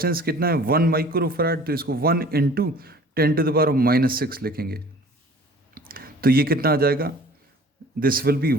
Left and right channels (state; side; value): normal; both; correlation 0.48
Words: कितना है 1 माइक्रोफैराड. तो इसको 1 × 10⁻⁻6 लिखेंगे. तो ये कितना आ जाएगा. दिस विल बी